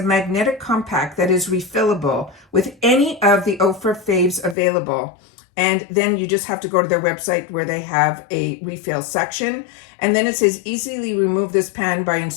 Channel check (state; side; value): drops out; right; at 4.5 s